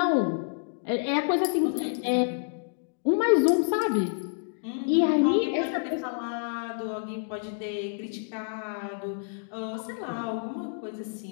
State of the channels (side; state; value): right; silent; digital silence